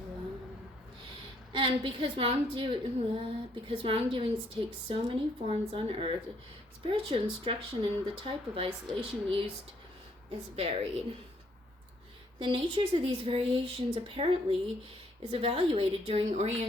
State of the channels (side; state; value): both; normal; correlation 0.68